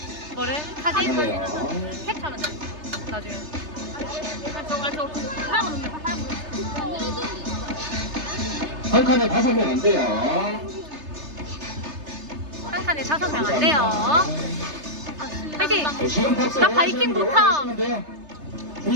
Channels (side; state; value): left; late; 3.3 ms